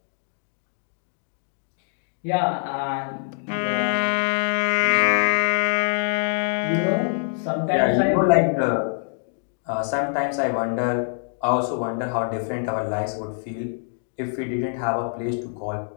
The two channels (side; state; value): right; silent; digital silence